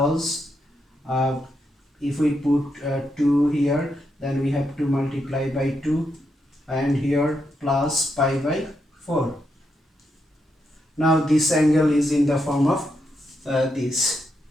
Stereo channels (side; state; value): both; normal; correlation 0.81